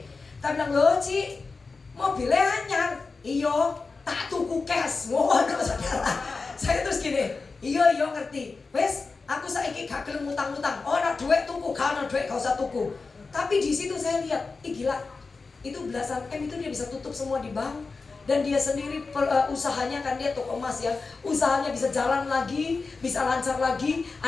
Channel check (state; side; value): quieter; right; 4.2 dB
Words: kita bilang loh Ci, mobilnya anyar, iyo tak tuku cash, mohon saudara. Saya terus gini, iyo ngerti, wes aku saiki gak gelem utang-utang. Oh, ana duit tuku, gak ana duit gak usah tuku. Tapi di situ saya lihat, gila. Itu belasan M itu dia bisa tutup semua di bank, dan dia sendiri usahanya kan dia toko emas ya. Usahanya bisa jalan lagi, bisa lancar lagi.